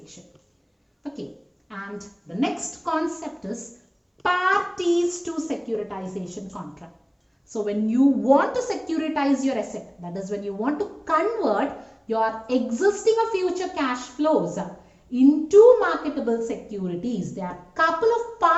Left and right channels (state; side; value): identical; both; correlation 1.00